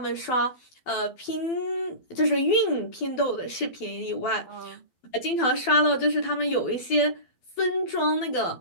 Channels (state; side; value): late; right; 12 ms